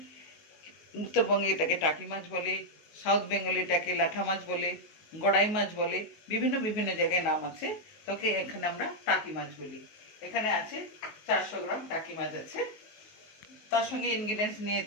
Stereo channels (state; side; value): late; right; 19 ms